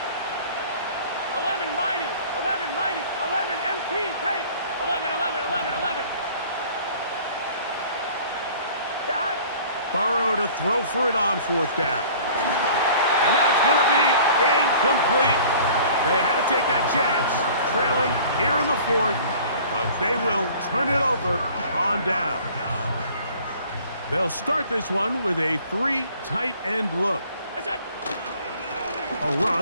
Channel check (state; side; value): inverted; both; correlation -0.49